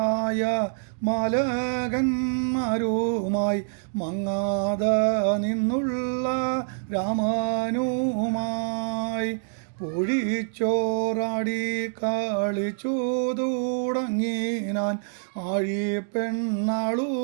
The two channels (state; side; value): silent; left; digital silence